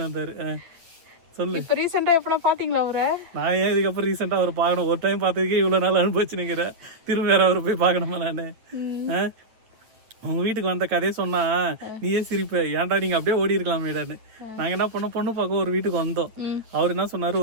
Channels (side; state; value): left; late; 8.9 ms